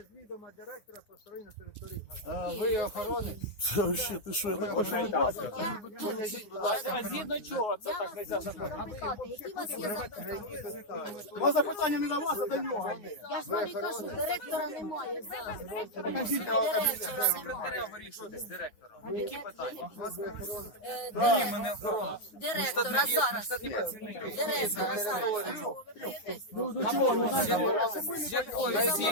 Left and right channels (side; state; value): right; late; 9.8 ms